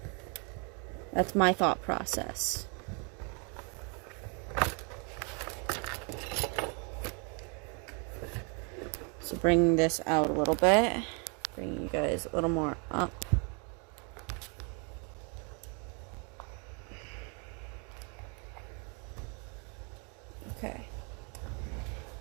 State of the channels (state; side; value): quieter; left; 36.0 dB